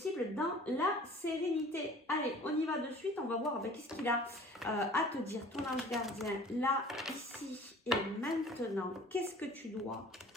dans la sérénité. Allez, on y va de suite, on va voir qu'est-ce qu'il a à te dire, ton ange gardien, là, ici et maintenant. Qu'est-ce que tu dois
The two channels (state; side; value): normal; both; correlation 0.47